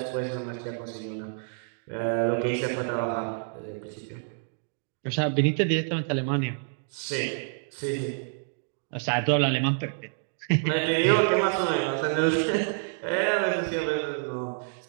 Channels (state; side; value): silent; left; digital silence